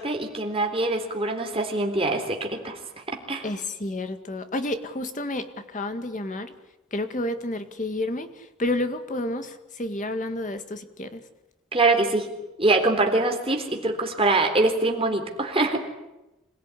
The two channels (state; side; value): normal; both; correlation 0.36